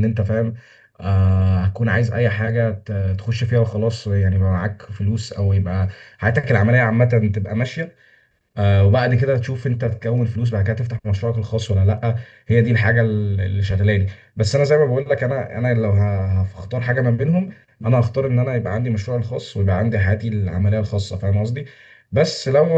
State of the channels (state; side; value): identical; both; correlation 1.00